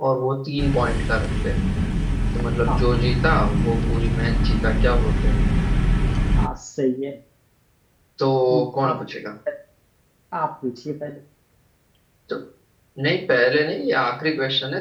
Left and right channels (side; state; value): both; identical; correlation 1.00